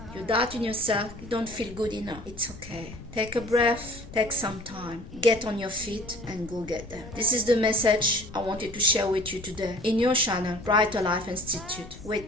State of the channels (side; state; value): left; noise; rumble, 16 dB below the sound